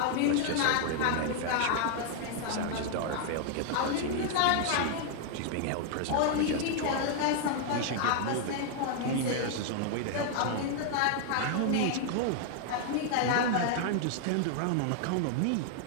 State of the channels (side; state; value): both; different; correlation 0.00